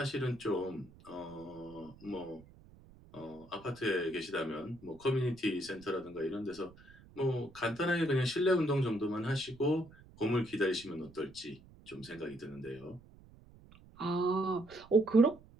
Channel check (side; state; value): right; noise; rumble, 23 dB below the sound